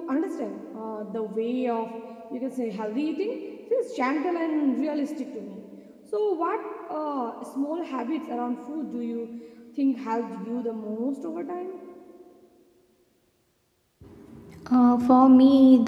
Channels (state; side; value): identical; both; correlation 1.00